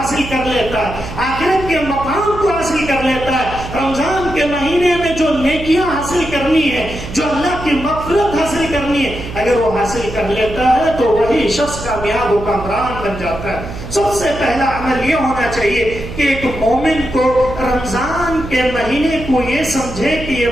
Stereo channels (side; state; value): right; noise; hum, 10 dB below the sound